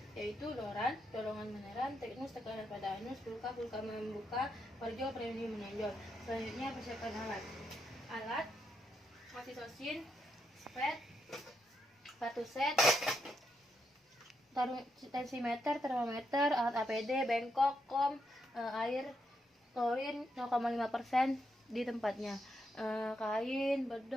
yaitu doran, dorongan meneran, teknus tekanan pada anus, pulka membuka, parjo premium menonjol. Selanjutnya persiapkan alat oksitosin, spet, sepatu set, tensimeter, termometer, alat APD, bengkok, air, klorin 0,5% di tempatnya, kain,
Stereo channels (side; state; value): both; normal; correlation 0.81